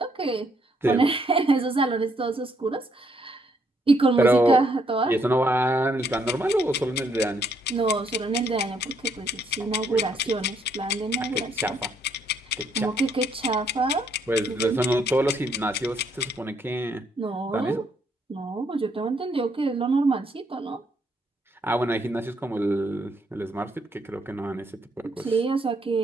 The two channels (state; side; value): normal; both; correlation 0.72